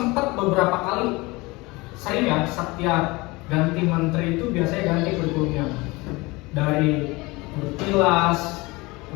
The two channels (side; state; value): right; quieter; 23.3 dB